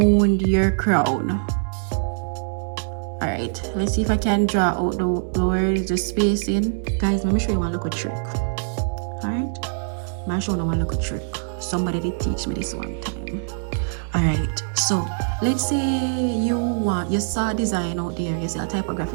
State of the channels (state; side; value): silent; left; digital silence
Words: your crown. Alright, let's see if I can draw out the where is the spacing. Guys, let me show you one little trick. Alright? I'm showing you a little trick. Somebody did teach me this one time. Alright, so let's say you saw a design out there, you see a